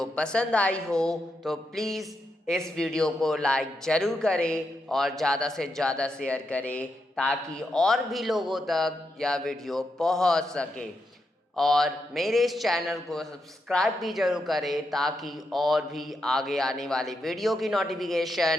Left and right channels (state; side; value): normal; both; correlation 0.83